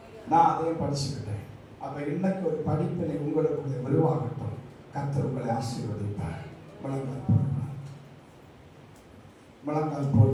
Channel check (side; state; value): both; identical; correlation 1.00